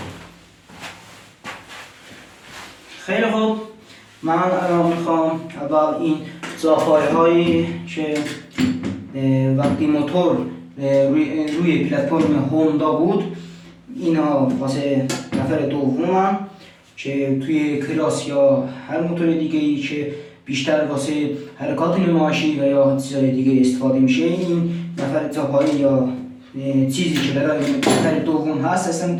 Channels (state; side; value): identical; both; correlation 1.00